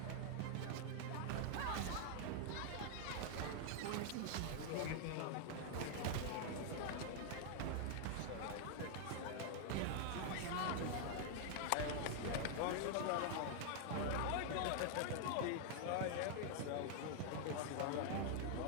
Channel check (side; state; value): both; different; correlation 0.00